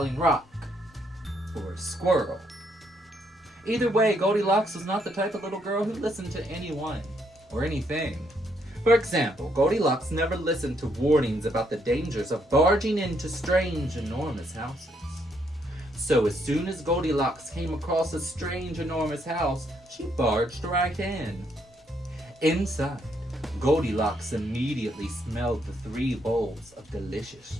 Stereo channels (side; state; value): both; normal; correlation 0.73